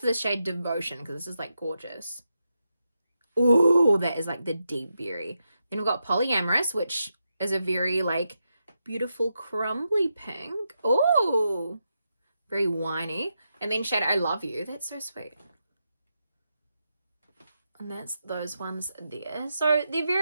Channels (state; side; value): inverted; both; correlation -0.86